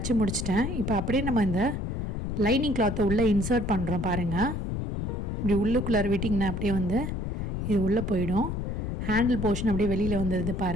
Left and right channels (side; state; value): left; noise; rumble, 2 dB below the sound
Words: முடிச்சிட்டேன். இப்போ அப்படியே நம்ம இந்த லைனிங் கிளாத்தை உள்ளே இன்சர்ட் பண்ணுறோம் பாருங்கள். இப்படி உள்ளுக்குள்ளார விட்டிங்கன்னா அப்படியே வந்து இது உள்ளே போயிடும். ஹேண்டில் போர்ஷன் அப்படியே வெளியில் வந்துடுது